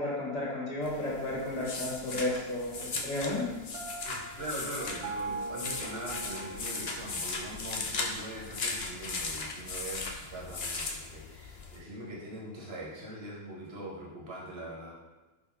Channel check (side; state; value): left; late; 2.9 ms